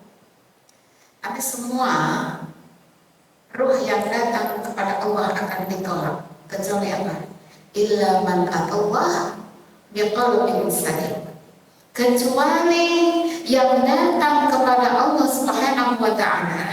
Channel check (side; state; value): both; identical; correlation 1.00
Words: ada semua ruh yang datang kepada Allah akan ditolak, kecuali apa? Illa man atallah biqalbin salim. Kecuali yang datang kepada Allah Subhanahu wa